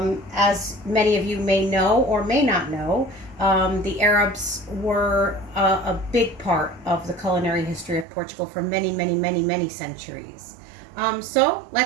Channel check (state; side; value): drops out; left; at 8.1 s